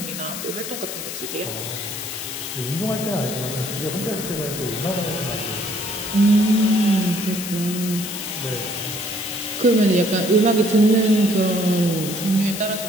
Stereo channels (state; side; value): noise; left; hiss, 7 dB below the sound